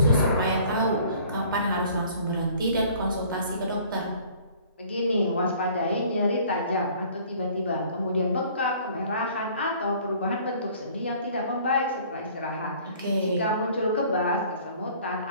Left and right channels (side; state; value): both; inverted; correlation -0.53